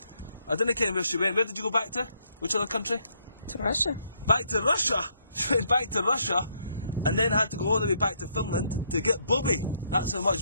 I didn't care where she went. Where did you go back to? Which other country? To Russia. Back to Russia? She went back to Russia. And then had to go all the way back to Finland to get Bobby. That's how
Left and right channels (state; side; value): inverted; both; correlation -0.72